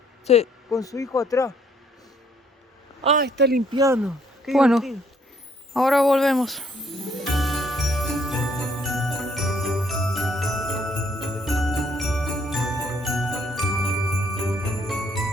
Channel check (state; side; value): normal; both; correlation 0.66